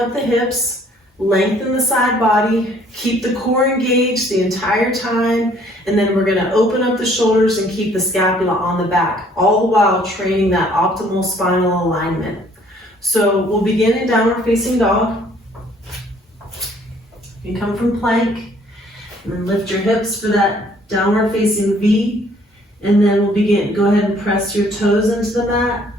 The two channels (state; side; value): normal; both; correlation 0.60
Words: the hips, lengthen the side body, keep the core engaged the entire time, and then we're going to open up the shoulders and keep the scapula on the back, all the while training that optimal spinal alignment. So we'll begin in downward facing dog. You come from plank, and then lift your hips for that downward facing V, and then we'll begin. Go ahead and press your toes into the mat.